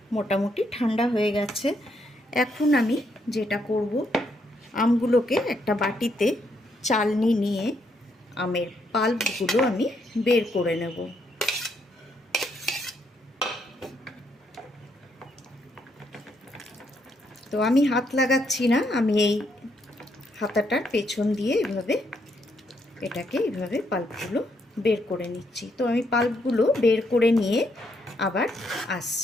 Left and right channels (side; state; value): both; normal; correlation 0.75